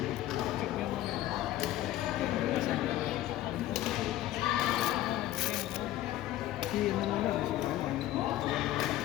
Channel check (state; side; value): quieter; right; 14.3 dB